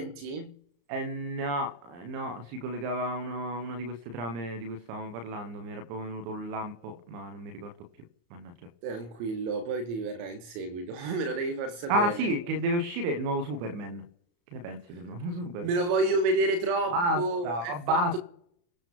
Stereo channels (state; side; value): late; left; 34 ms